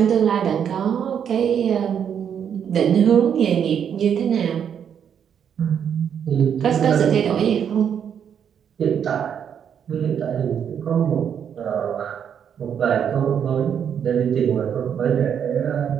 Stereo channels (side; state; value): left; quieter; 8.2 dB